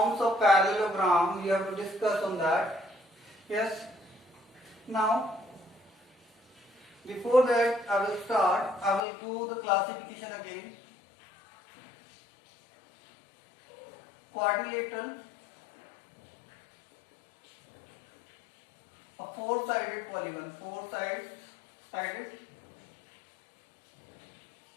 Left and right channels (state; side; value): drops out; right; at 9.0 s